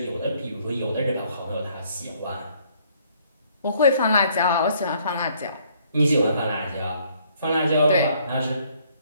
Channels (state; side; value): inverted; both; correlation -0.64